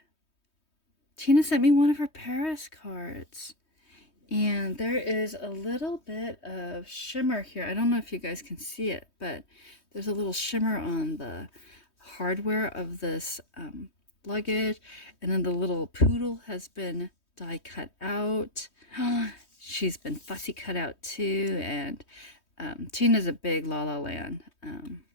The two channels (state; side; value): late; right; 3.2 ms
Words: Tina sent me one of her Paris cards, and there is a little bit of shimmer here. I don't know if you guys can see it, but there's a little shimmer on the hardware of this luggage, and then the little poodle has been die cut out. She's been fussy cut out too, and Tina's a big La La Land